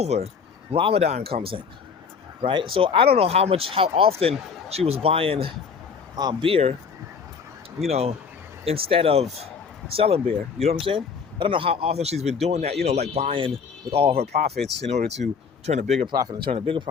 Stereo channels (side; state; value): right; quieter; 5.9 dB